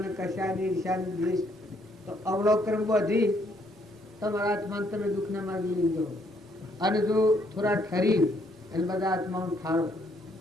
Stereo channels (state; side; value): normal; both; correlation 0.69